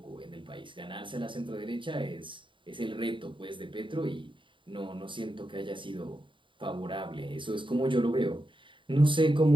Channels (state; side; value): late; left; 0.24 ms